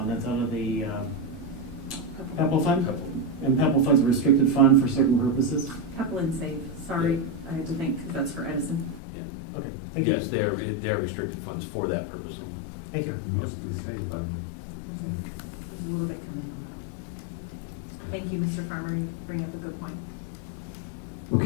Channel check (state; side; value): drops out; right; at 9.0 s